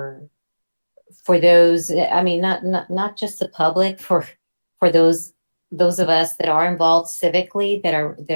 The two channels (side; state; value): both; inverted; correlation -1.00